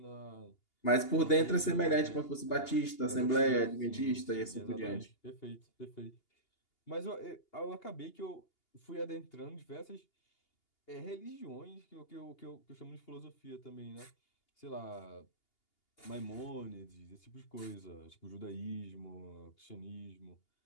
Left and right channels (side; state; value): right; late; 2.8 ms